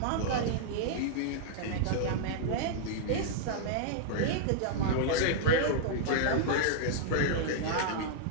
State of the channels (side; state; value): both; different; correlation -0.01